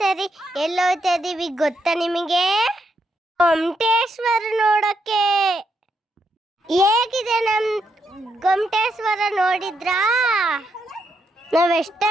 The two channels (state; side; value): normal; both; correlation 0.80